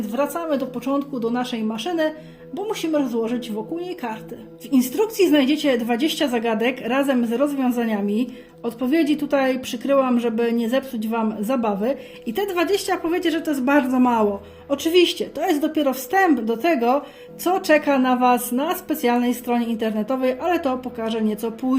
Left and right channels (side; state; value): both; identical; correlation 1.00